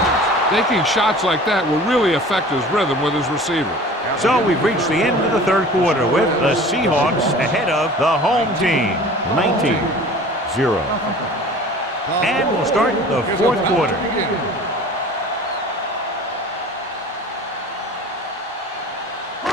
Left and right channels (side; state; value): both; normal; correlation 0.43